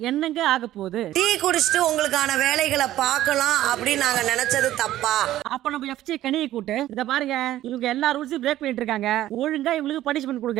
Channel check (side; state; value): left; quieter; 13.9 dB